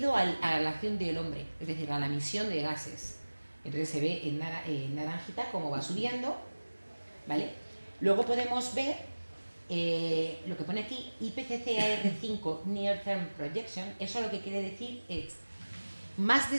a la acción del hombre, es decir, a la emisión de gases. Entonces se ve en naranjita cómo va subiendo, ¿vale? Luego podemos ver lo que pone aquí, IPCC AR5 Near Term Projection. Eso lo que quiere decir es más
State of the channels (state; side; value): inverted; both; correlation -1.00